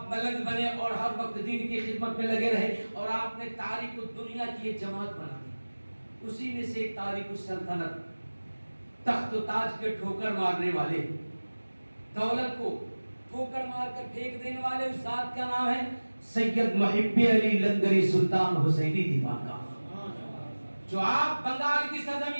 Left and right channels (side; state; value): both; inverted; correlation -1.00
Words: ملنگ بنے اور ہر وقت دین کی خدمت میں لگے رہے اور آپ نے تاریخ دنیا کی ایک جماعت بنا دی. اسی میں سے ایک تاریخ السلطنت, تخت و تاج کے ٹھوکر مارنے والے, دولت کو ٹھوکر مار کر پھینک دینے والے اس ذات کا نام ہے سید محب علی لنگری سلطان حسینی دیوان کا, جو آپ بنگال کی